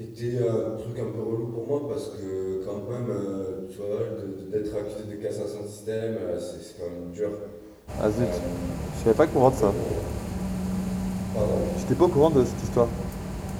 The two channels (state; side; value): identical; both; correlation 1.00